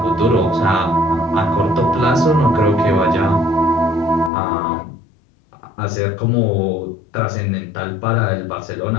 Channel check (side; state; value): right; drops out; at 4.3 s